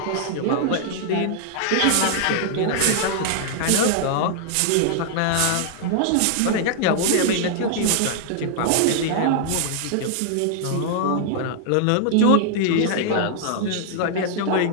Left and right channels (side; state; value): both; different; correlation 0.00